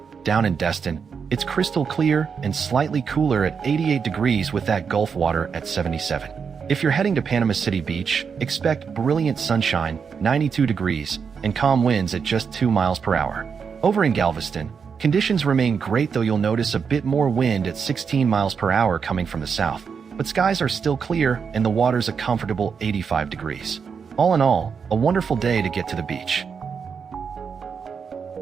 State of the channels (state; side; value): quieter; left; 6.2 dB